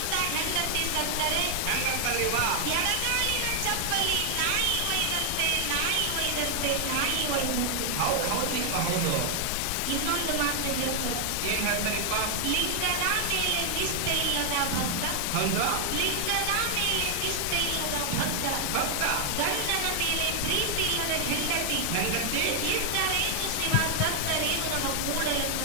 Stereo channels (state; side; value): different; both; correlation 0.00